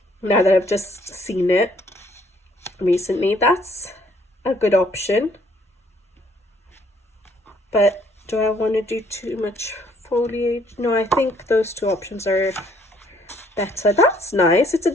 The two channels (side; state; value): both; normal; correlation 0.64